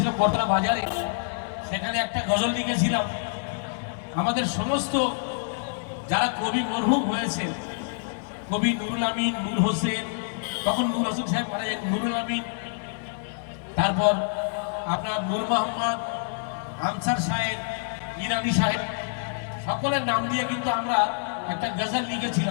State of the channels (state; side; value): silent; right; digital silence